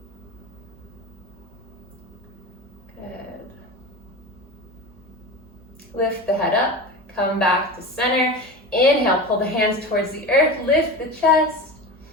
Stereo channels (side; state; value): both; normal; correlation 0.29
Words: Good. Lift the head up, come back to center. Inhale, pull the hands towards the earth, lift the chest.